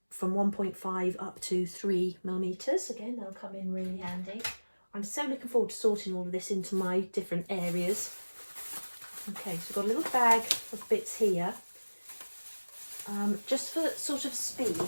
from 1.5 up to 3mm. Again, they'll come in really handy. I'm so looking forward to sorting all of this into my different areas. Okay, so we've got a little bag of bits here. Just for sort of speed,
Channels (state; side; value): inverted; both; correlation -1.00